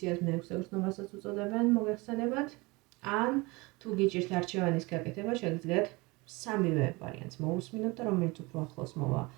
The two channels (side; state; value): left; quieter; 24.8 dB